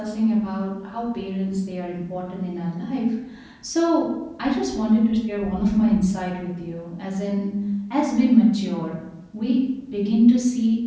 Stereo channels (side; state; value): both; identical; correlation 1.00